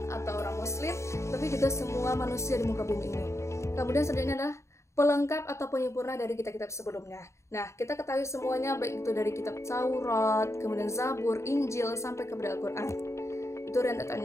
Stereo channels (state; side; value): late; right; 0.14 ms